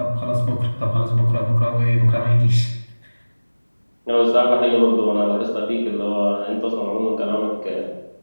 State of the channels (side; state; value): both; inverted; correlation -1.00